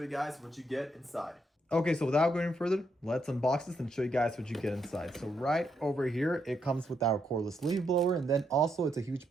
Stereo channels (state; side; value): normal; both; correlation 0.78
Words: guys what you get inside. Okay, so without going further, let's unbox this and show you guys what you get inside. So right over here, it comes with our cordless leaf blower, and then also it's a huge